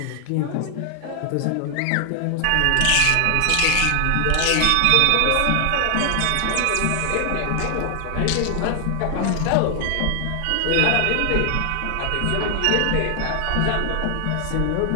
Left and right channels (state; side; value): different; both; correlation 0.00